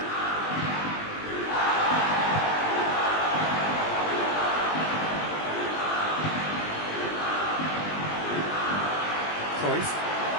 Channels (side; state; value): right; late; 20 ms